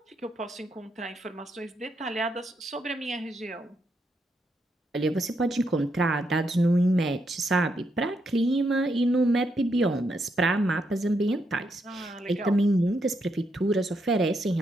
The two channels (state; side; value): normal; both; correlation 0.80